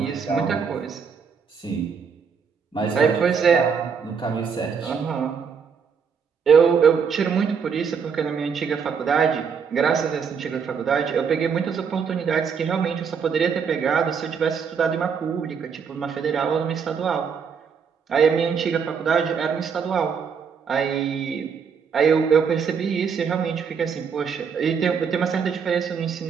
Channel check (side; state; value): left; quieter; 6.4 dB